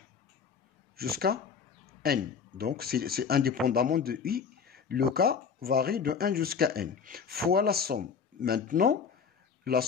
jusqu'à n. Donc, c'est indépendamment de i. Le k varie de 1 jusqu'à n. Fois la somme. Maintenant, la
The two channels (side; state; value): right; quieter; 6.3 dB